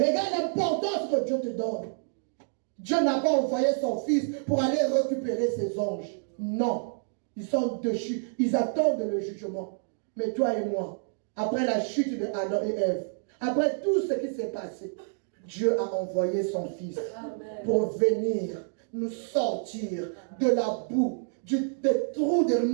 l'importance que Dieu te donne. Dieu n'a pas envoyé son fils pour aller récupérer ses anges. Non. Ils sont déchus. Ils attendent le jugement. Mais toi et moi, après la chute de Adam et Ève, après tout ce qui s'est passé, Dieu a envoyé son fils pour venir nous sortir de la boue, des trous de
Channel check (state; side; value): silent; left; digital silence